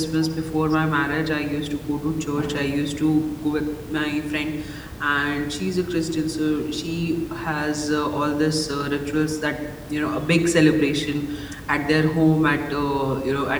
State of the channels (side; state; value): both; identical; correlation 1.00